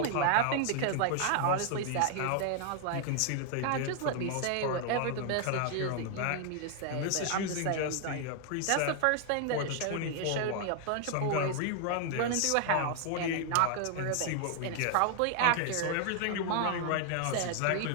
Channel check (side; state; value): both; different; correlation 0.00